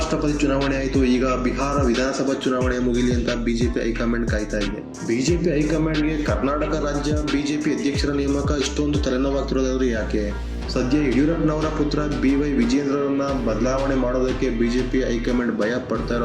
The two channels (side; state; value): both; identical; correlation 1.00